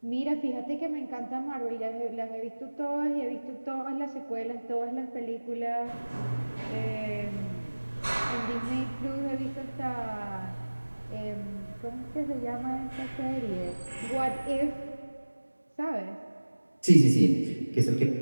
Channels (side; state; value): both; inverted; correlation -1.00